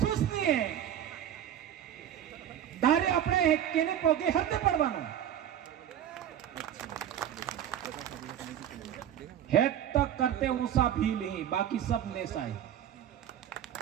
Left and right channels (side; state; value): left; quieter; 10.3 dB